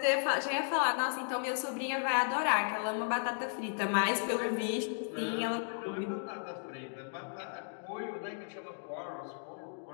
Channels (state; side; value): silent; right; digital silence